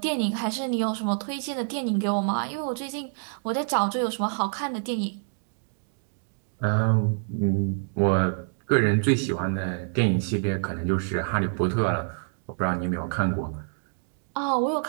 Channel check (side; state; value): left; silent; digital silence